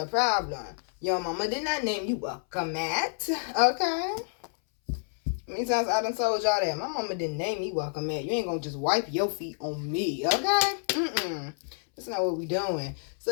problem. Your mama did not name you welcome at. Okay? Many times I done told y'all that. My mama didn't name me welcome at. You ain't gonna just wipe your feet on me. Okay? That's not what we doing.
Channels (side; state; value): right; silent; 59 dB below the other